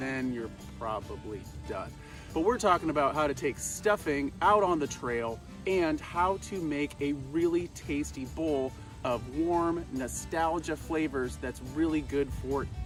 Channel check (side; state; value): both; identical; correlation 1.00